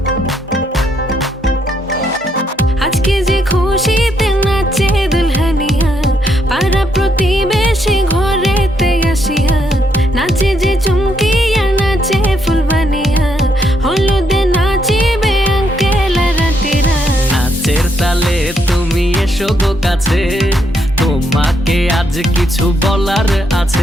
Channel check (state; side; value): normal; both; correlation 0.76